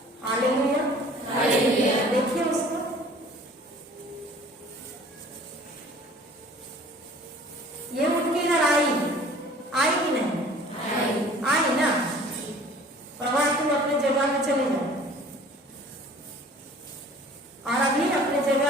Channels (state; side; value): normal; both; correlation 0.49